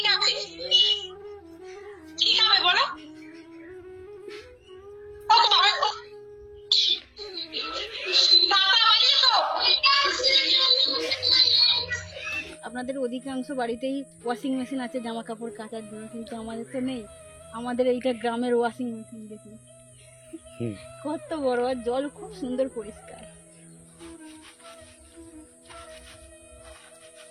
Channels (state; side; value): identical; both; correlation 1.00